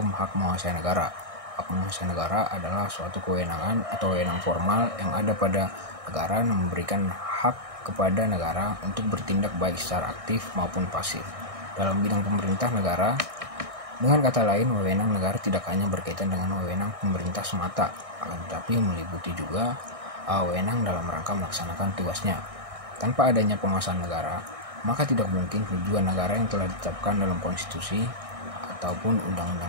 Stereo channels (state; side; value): late; left; 1.6 ms